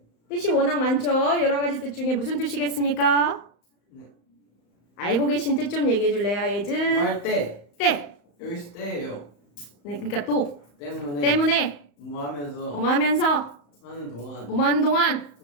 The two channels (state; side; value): late; right; 35 ms